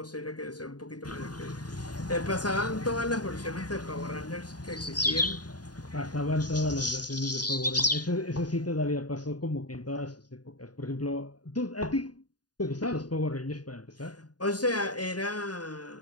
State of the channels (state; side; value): late; right; 0.69 ms